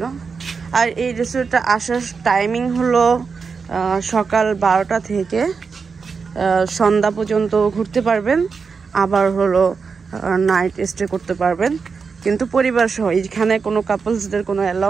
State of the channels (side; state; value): left; quieter; 5.3 dB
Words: আর এই রেস্টুরেন্টটা আসার টাইমিং হলো সকাল 12টা থেকে সন্ধ্যা পর্যন্ত ঘুরতে পারবেন, আবার হলো নাইট স্টে করতে পারবেন, কিন্তু পরিবার সহ। এখানে কোনো কাপলসদের কোনো